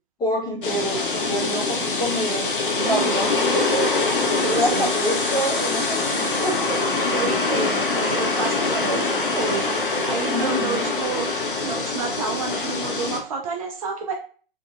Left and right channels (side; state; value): both; normal; correlation 0.17